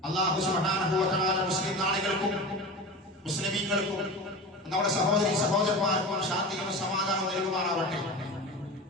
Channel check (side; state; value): both; normal; correlation 0.30